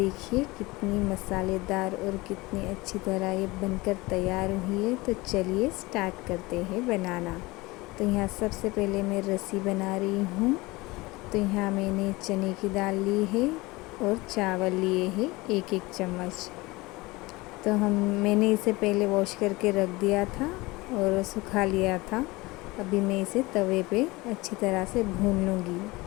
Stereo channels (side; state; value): right; quieter; 22.1 dB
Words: कितनी मसालेदार और कितनी अच्छी तरह ये बनकर तैयार हुई है। तो चलिए स्टार्ट करते हैं बनाना। तो यहाँ सबसे पहले मैं रस्सी बना रही हूँ। तो यहाँ मैंने चने की दाल ली है और चावल लिए हैं 1-1 चम्मच। तो मैंने इसे पहले वॉश करके रख दिया था और सुखा लिया था। अभी मैं इसे तवे पे अच्छी तरह से भून लूँगी।